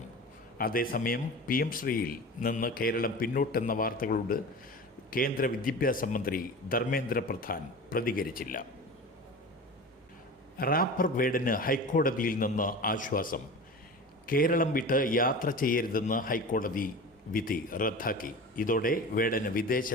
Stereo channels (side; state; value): both; normal; correlation 0.33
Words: അതേസമയം PM ശ്രീയിൽ നിന്ന് കേരളം പിന്നോട്ടെന്ന വാർത്തകളോട് കേന്ദ്ര വിദ്യാഭ്യാസ മന്ത്രി ധർമ്മേന്ദ്ര പ്രധാൻ പ്രതികരിച്ചില്ല. റാപ്പർ വേടന് ഹൈക്കോടതിയിൽ നിന്ന് ആശ്വാസം. കേരളം വിട്ട് യാത്ര ചെയ്യരുതെന്ന് ഹൈക്കോടതി വിധി റദ്ദാക്കി. ഇതോടെ വേടന്